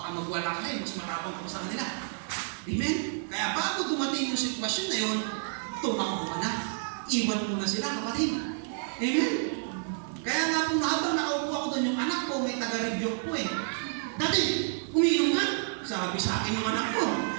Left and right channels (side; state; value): left; silent; digital silence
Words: magwala ka mas matapang ka sa kanila. Amen? Kaya bago dumating yung sitwasyon na yun, tumakbo ka na. Iwan mo na sila, kapatid. Amen? Kaya nga po, habang nakaupo ako doon, yung anak ko, may taga-review ko eh. Dati, umiinom nga. Sabi sa akin yung anak ko.